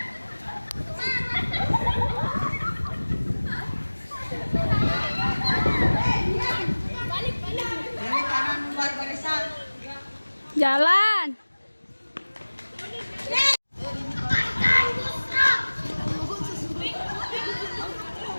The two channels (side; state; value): both; inverted; correlation -1.00